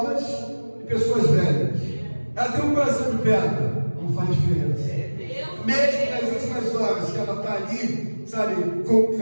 e pessoas velhas. Ela tem um coração de pedra, não faz diferença. Mesmo nas últimas horas que ela está ali, sabe, com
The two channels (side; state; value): both; inverted; correlation -1.00